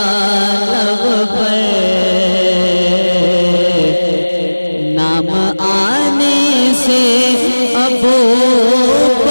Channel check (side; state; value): both; inverted; correlation -1.00